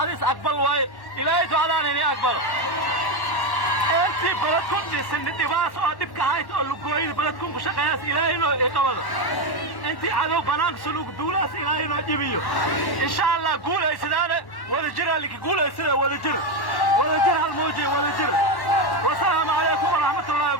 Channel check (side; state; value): right; late; 1.1 ms